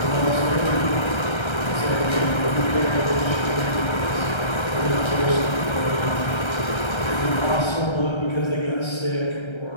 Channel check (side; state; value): right; late; 1.3 ms